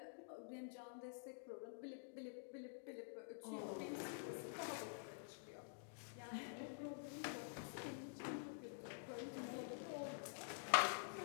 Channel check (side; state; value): right; silent; digital silence